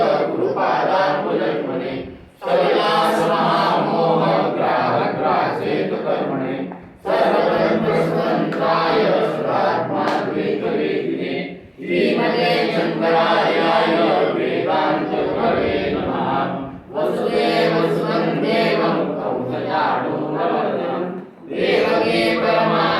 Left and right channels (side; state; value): both; identical; correlation 1.00